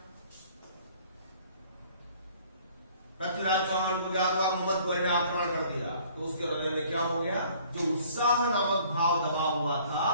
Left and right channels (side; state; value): both; inverted; correlation -0.55